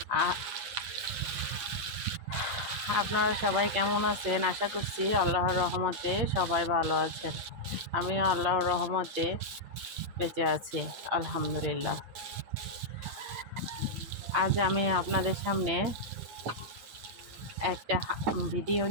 আপনারা সবাই কেমন আছেন? আশা করছি আল্লাহর রহমতে সবাই ভালো আছেন। আমিও আল্লাহর রহমতে বেঁচে আছি, আলহামদুলিল্লাহ। আজ আমি আপনাদের সামনে একটা ভিডিও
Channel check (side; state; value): left; late; 9.0 ms